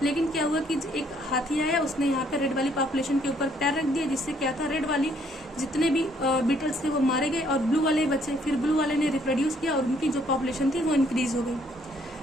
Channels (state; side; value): normal; both; correlation 0.66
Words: लेकिन क्या हुआ कि एक हाथी आया, उसने यहाँ पे रेड वाली पॉपुलेशन के ऊपर पैर रख दिया, जिससे क्या था रेड वाली जितने भी बीटल्स थे वो मारे गए और ब्लू वाले बचे। फिर ब्लू वाले ने रिप्रोड्यूस किया और उनकी जो पॉपुलेशन थी वो इंक्रीज हो गई।